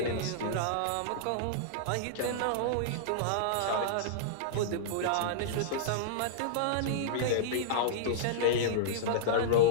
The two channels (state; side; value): different; both; correlation -0.02